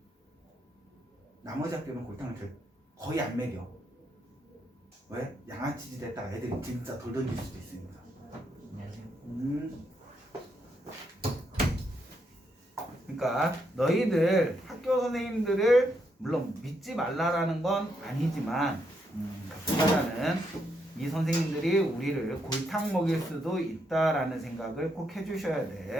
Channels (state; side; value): normal; both; correlation 0.78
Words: 나머지 학교는 골탕을 거의 안 먹여. 왜? 양아치 짓 했다가 애들이 진짜 돌 던질 수도 있으니까. 안녕하세요. 그러니까 너희들 학교 선생님들을 물론 믿지 말라라는 건 아니지만 보다는 이 선생님들이 우리를 골탕 먹일 수도 있다라는 생각을 꼭 해주셔야